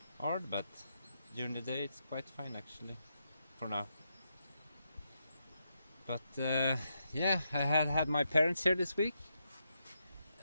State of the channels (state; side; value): inverted; both; correlation -0.83